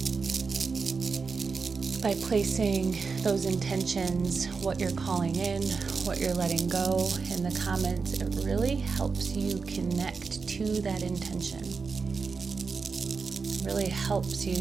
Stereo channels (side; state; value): left; quieter; 4.9 dB